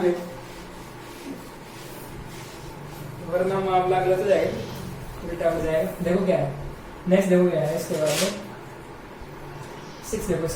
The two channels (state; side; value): identical; both; correlation 1.00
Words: पे, वरना मामला गलत हो जाएगा, उल्टा हो जाएगा। देखो क्या है नेक्स्ट, देखो क्या है इसके बाद में 6, देखो